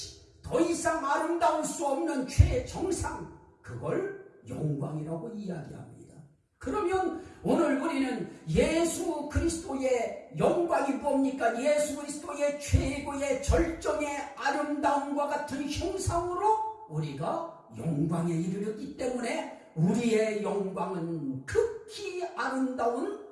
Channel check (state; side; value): identical; both; correlation 1.00